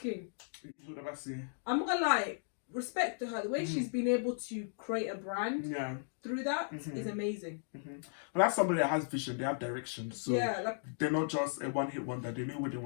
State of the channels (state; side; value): silent; right; digital silence